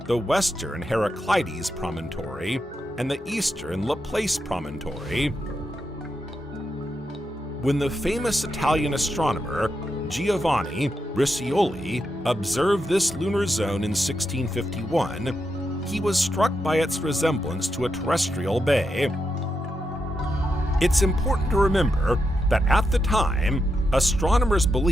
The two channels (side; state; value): both; normal; correlation 0.85